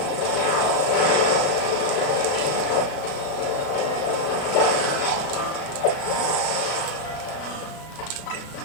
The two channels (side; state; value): right; late; 37 ms